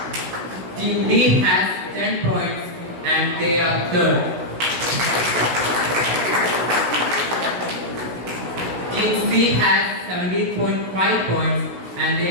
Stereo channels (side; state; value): left; late; 16 ms